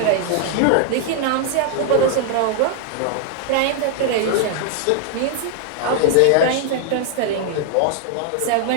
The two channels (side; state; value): both; different; correlation 0.00